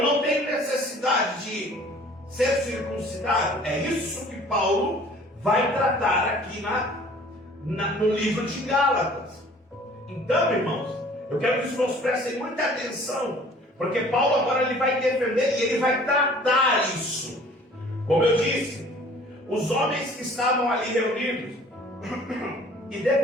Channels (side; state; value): both; normal; correlation 0.51